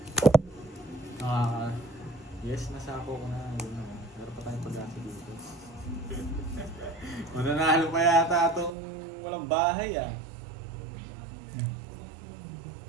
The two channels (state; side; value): drops out; left; at 8.7 s